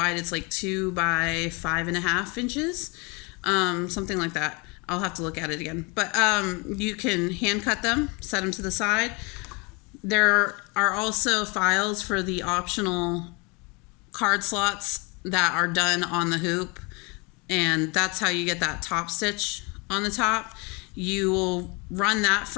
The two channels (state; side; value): quieter; right; 29.4 dB